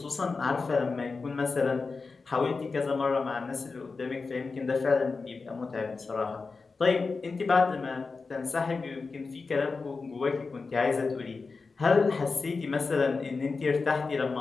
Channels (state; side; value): quieter; right; 4.3 dB